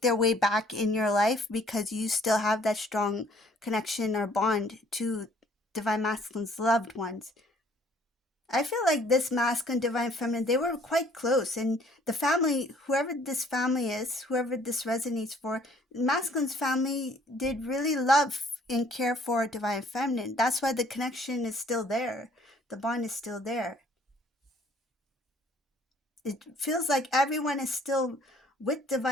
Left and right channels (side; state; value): both; normal; correlation 0.59